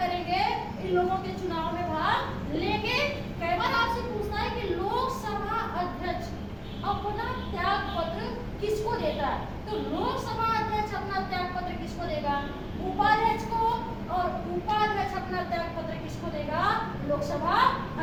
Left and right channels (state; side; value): identical; both; correlation 1.00